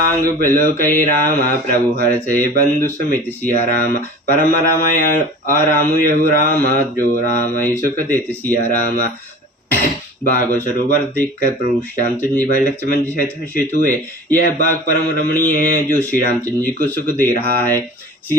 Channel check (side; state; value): both; normal; correlation 0.39